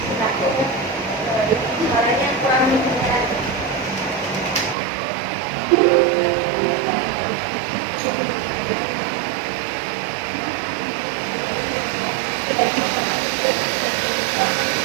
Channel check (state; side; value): drops out; left; at 4.8 s